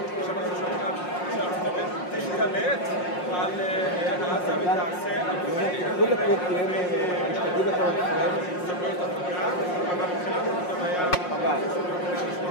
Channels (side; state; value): right; late; 5.6 ms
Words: עכשיו אנחנו שומעים שארצות הברית תשתלט על עזה ותעשה סמכויות עבודה, אבל מבחינת זה היה